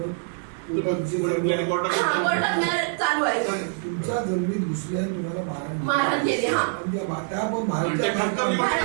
चालू आहे. तुमच्या जमिनीत घुसल्या तुम्हाला मारहाण केली.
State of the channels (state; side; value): silent; left; 62 dB below the other